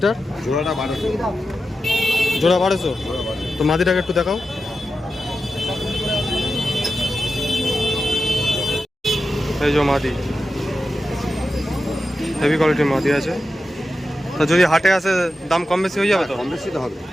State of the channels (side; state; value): both; normal; correlation 0.91